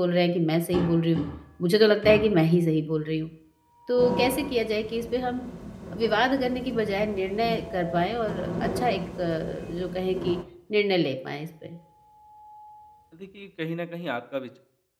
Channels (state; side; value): identical; both; correlation 1.00